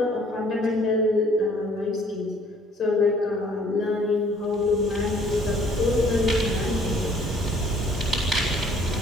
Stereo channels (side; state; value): both; normal; correlation 0.58